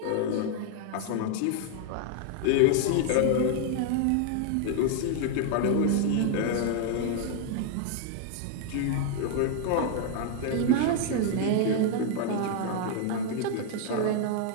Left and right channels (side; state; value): both; different; correlation 0.00